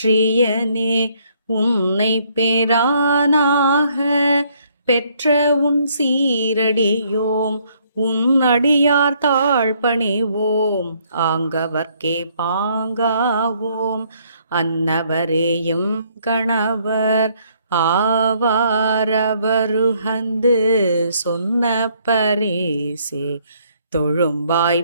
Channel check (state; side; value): inverted; both; correlation -0.68